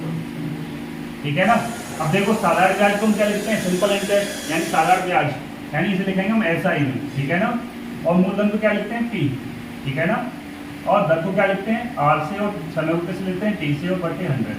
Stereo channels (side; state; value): both; identical; correlation 1.00